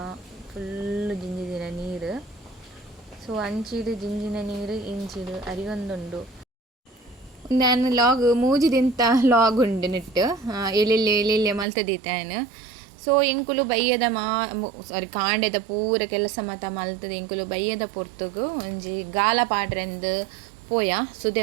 ಫುಲ್ಲು ಜಿಂಜಿದಿನ ನೀರು. ಸೊ ಅಂಚಿಡು ಜಿಂಜಿನ ನೀರು ಇಂಚಿಡು ಅರಿಯೊಂದುಂಡು. ನಾನು ಲಾಗ್ ಮೂಜಿದಿಂತ ಲಾಗ್ ಉಂಡು ನೆಟ್ಟು ಎಲ್ಲೆಲ್ಲೆ ಮಲ್ತದೀತಾನು. ಸೊ ಎಂಕುಲು ಬಯ್ಯದ ಸಾರಿ ಕಾಂಡೆದ ಪೂರ ಕೆಲಸ ಮಾತ ಮಲ್ತದ ಎಂಕುಲು ಬಯ್ಯದ ಪೊರ್ತುಗು ಒಂಜಿ ಗಾಲ ಪಾಡ್ರೆಂದು ಪೋಯ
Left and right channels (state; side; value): drops out; left; at 11.7 s